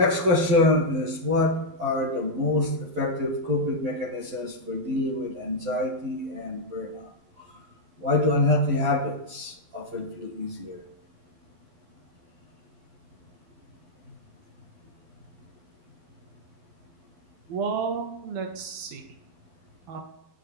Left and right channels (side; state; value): left; late; 11 ms